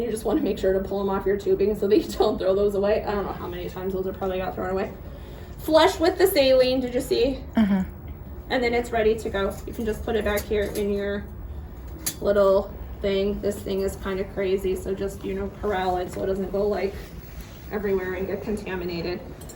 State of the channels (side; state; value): both; identical; correlation 1.00